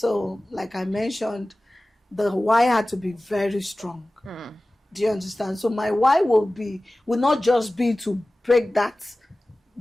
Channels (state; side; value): normal; both; correlation 0.97